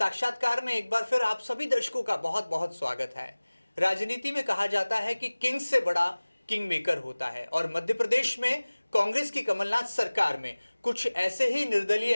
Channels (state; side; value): inverted; both; correlation -1.00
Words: में एक बार फिर आप सभी दर्शकों का बहुत बहुत स्वागत है। राजनीति में कहा जाता है कि किंग से बड़ा किंग मेकर होता है और मध्य प्रदेश में कांग्रेस की कमलनाथ सरकार में कुछ ऐसे ही निर्दलीय